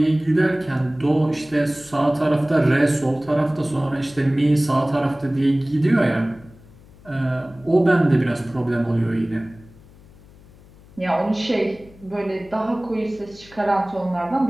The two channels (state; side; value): noise; left; hum, 24 dB below the sound